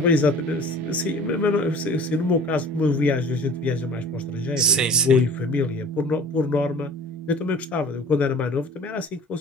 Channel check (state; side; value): normal; both; correlation 0.45